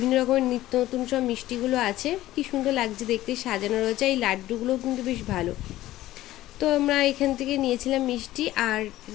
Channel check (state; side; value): quieter; right; 15.3 dB